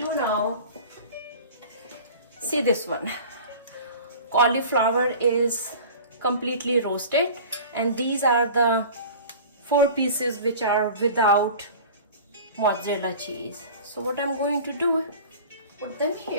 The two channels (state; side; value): inverted; both; correlation -0.40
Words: now, see this one. Cauliflower is completely roasted, and these are the 4 pieces which are without mozzarella cheese. So what I'm going to do, put them